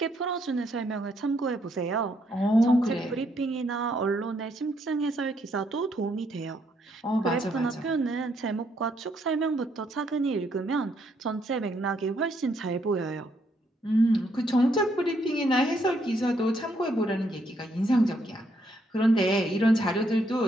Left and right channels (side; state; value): both; normal; correlation 0.73